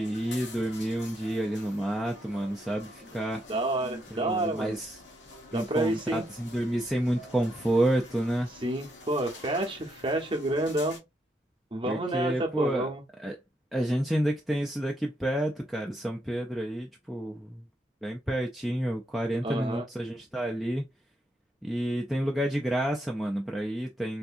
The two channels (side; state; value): both; normal; correlation 0.79